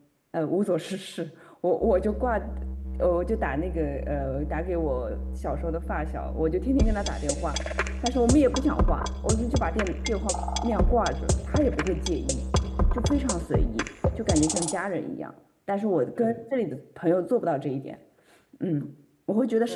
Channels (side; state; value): both; identical; correlation 1.00